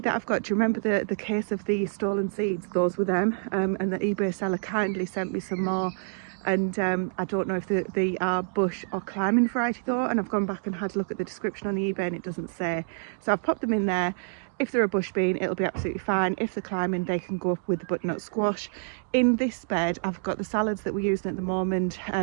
that I've got, do you remember the case of the stolen seeds? Those were them, and the eBay seller kindly sent me some more, and I don't know if they are bush or climbing variety though, and I've gone back and had a look at the description on the eBay and it doesn't say, so I've popped them in there. If they're a bush bean, it'll be absolutely fine. If they're climbing, they can go up with the butternut squash. In this bed, I've got the salads that we're using at the moment.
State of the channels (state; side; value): silent; left; digital silence